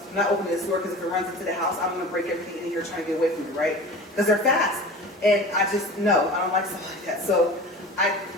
I'm not opening this door, because if it runs into the house, I'm gonna break everything in here trying to get away from it, right? Because they're fast. And I just, no, I don't like stuff like that. So I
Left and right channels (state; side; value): normal; both; correlation 0.36